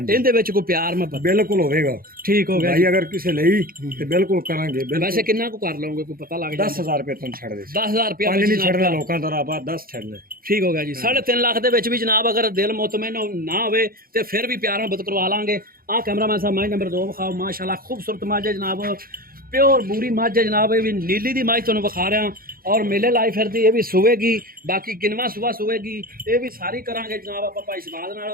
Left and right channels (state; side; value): late; left; 0.42 ms